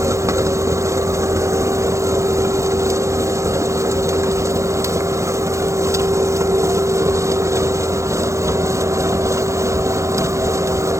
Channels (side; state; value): left; late; 0.15 ms